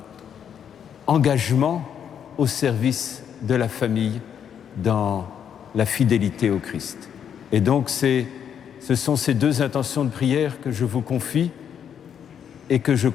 engagement au service de la famille, dans la fidélité au Christ. Et donc ce sont ces deux intentions de prière que je vous confie et que je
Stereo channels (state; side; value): quieter; right; 8.4 dB